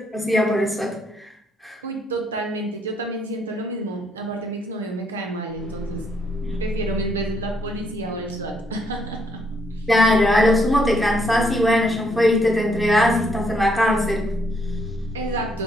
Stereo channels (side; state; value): both; normal; correlation 0.72